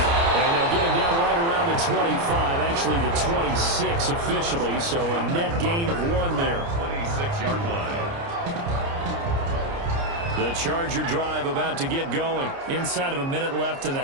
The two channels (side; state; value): left; late; 29 ms